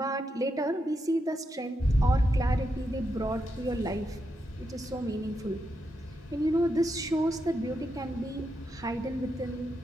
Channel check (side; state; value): both; normal; correlation 0.84